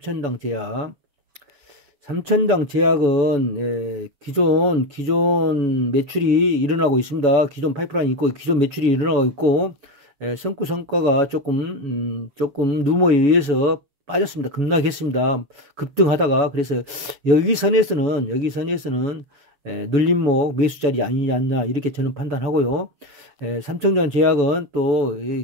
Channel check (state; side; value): late; left; 7.0 ms